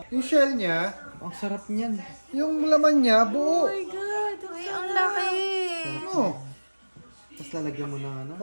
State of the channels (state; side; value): inverted; both; correlation -1.00